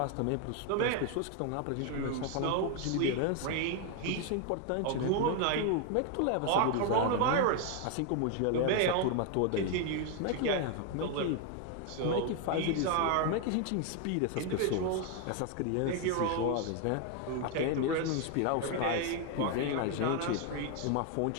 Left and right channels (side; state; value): both; different; correlation 0.01